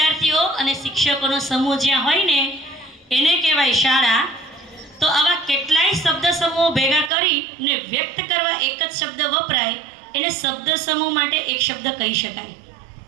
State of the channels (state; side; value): drops out; left; at 7.1 s